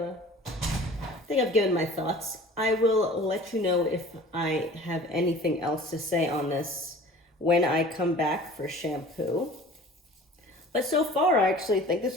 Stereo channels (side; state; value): both; normal; correlation 0.44